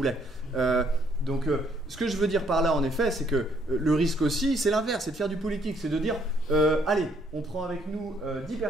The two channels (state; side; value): normal; both; correlation 0.67